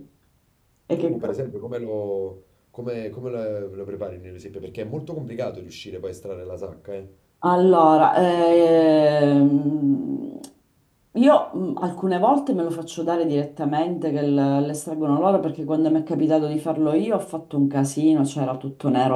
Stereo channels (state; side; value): identical; both; correlation 1.00